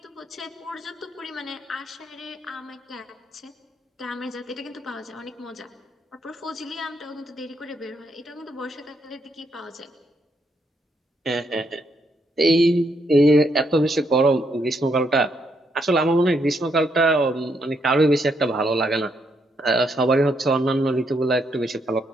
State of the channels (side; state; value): both; normal; correlation 0.76